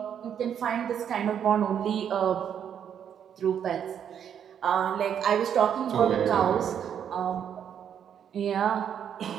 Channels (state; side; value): quieter; left; 8.7 dB